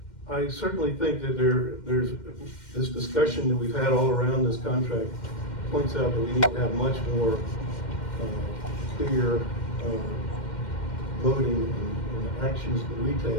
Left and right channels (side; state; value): right; late; 2.1 ms